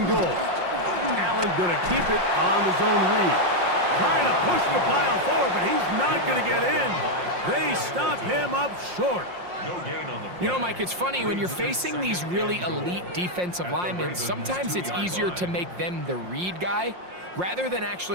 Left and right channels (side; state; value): left; late; 5.6 ms